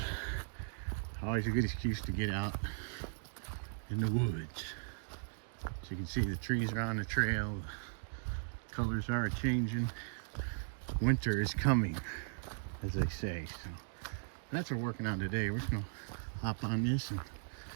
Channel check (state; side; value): silent; left; digital silence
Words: always a good excuse to get out in the woods. So you can see the trees are on the trail, the colors are changing. Winter is coming, as they say. So that's what we're working on today. We're just gonna hop on this and